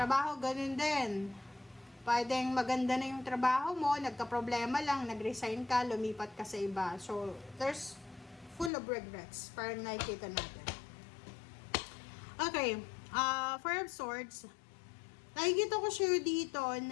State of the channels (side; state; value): right; drops out; at 8.7 s